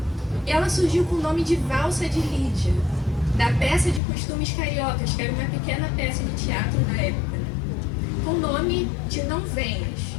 Ela surgiu com o nome de Valsa de Lídia, da peça de costumes cariocas, que era uma pequena peça de teatro da época, né? Com o nome de Não Venhas.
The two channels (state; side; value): drops out; right; at 4.0 s